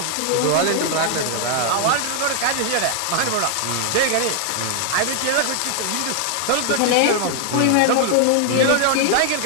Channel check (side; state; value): both; different; correlation 0.00